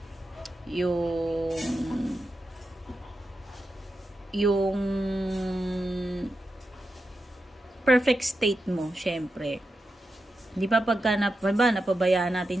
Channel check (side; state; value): both; normal; correlation 0.89